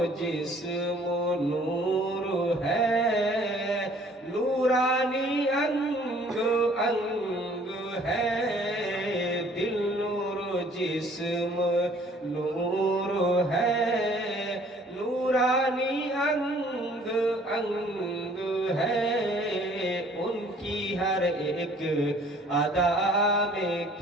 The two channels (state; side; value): normal; both; correlation 0.56